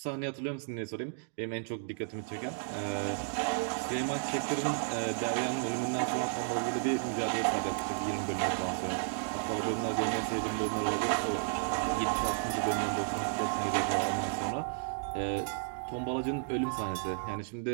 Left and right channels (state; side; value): silent; left; digital silence